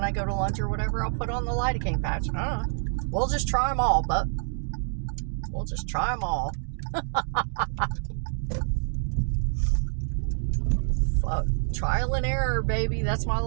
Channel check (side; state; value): left; silent; 60 dB below the other